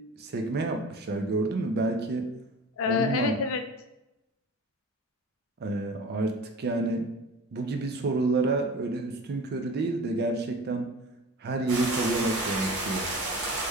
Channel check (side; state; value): both; normal; correlation 0.38